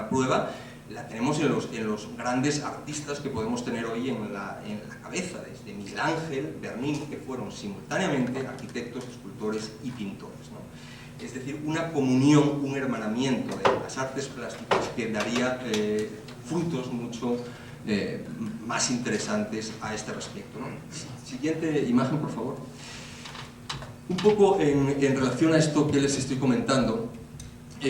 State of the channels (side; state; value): both; identical; correlation 1.00